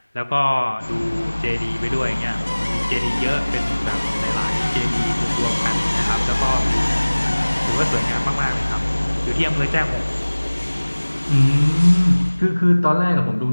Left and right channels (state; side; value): inverted; both; correlation -1.00